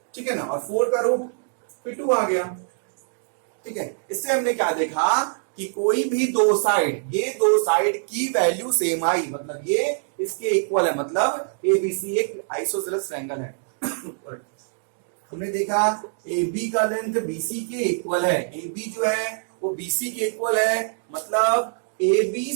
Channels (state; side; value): silent; left; digital silence